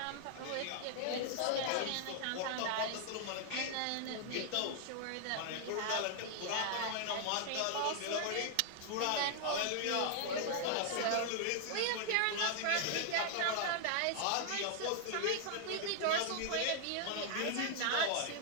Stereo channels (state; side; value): different; both; correlation -0.01